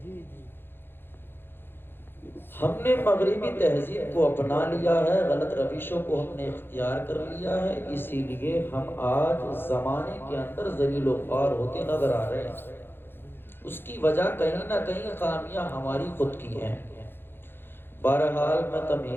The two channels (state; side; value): late; right; 0.10 ms